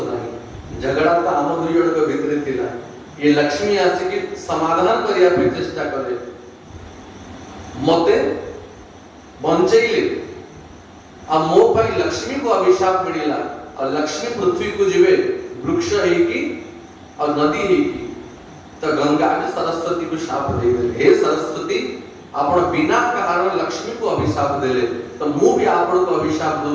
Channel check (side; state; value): both; identical; correlation 1.00